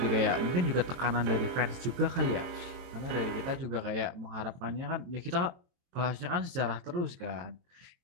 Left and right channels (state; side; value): late; left; 23 ms